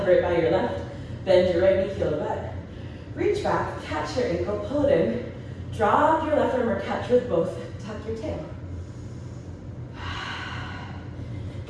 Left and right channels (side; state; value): both; identical; correlation 1.00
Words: it by your left. Bend your right knee, heel to butt. Reach back, catch your ankle, pull it in. Drop your left arm or catch with both. Tuck your tail.